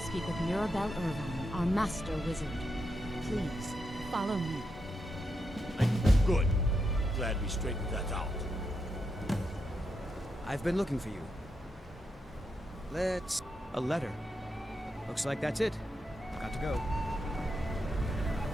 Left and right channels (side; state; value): both; normal; correlation 0.84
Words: with Mirabelle Irvine, our master wizard. Please, follow me. Good. Glad we straightened that out. I've been looking for you. Let's... A letter. Looks like that's it. Got to go.